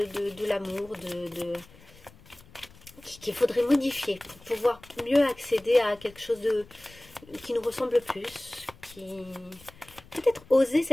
l'amour, qu'il faudrait modifier pour pouvoir mieux accéder à quelque chose qui nous ressemble plus, peut-être oser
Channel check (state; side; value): noise; left; rumble, 24 dB below the sound